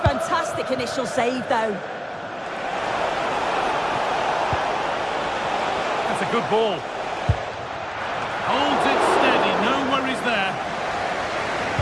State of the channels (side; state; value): both; identical; correlation 1.00